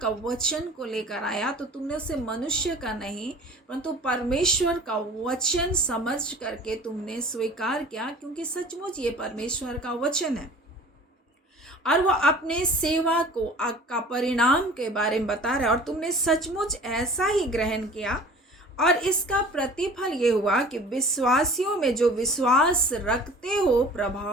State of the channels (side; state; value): both; normal; correlation 0.44